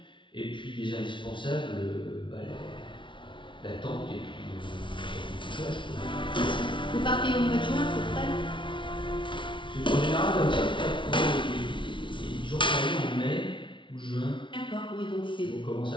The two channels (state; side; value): late; right; 0.24 ms